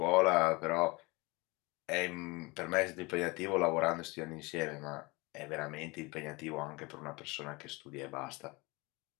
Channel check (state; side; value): quieter; right; 24.9 dB